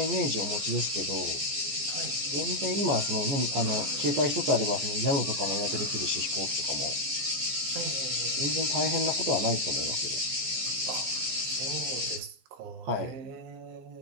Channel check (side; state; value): left; late; 15 ms